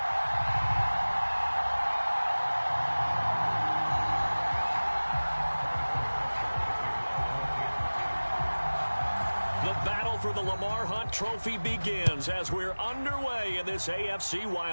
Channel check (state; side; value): inverted; both; correlation -1.00